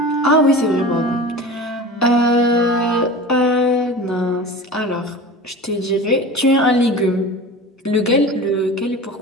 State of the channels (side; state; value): both; normal; correlation 0.34